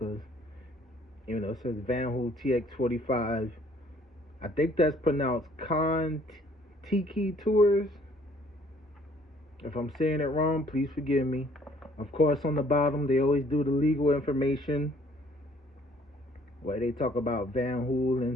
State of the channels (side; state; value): both; normal; correlation 0.60